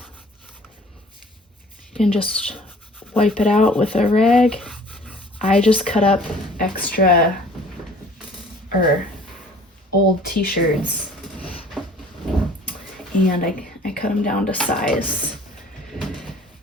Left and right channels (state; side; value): normal; both; correlation 0.51